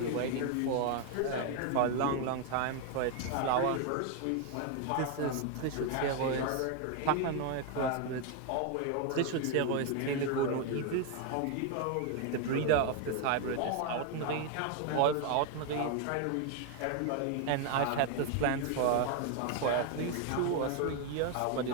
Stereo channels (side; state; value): both; different; correlation 0.01